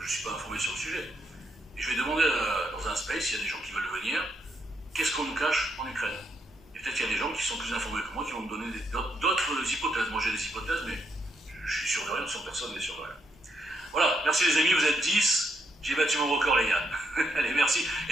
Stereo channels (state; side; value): normal; both; correlation 0.78